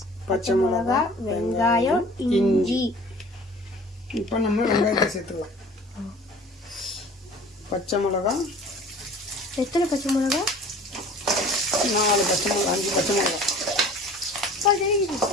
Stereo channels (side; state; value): both; normal; correlation 0.46